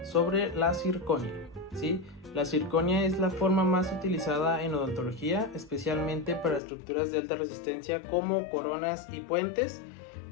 sobre la zirconia, ¿sí? La zirconia es la forma más utilizada en odontología, especialmente para estructuras de alta resistencia como coronas y puentes,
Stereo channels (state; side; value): drops out; right; at 6.6 s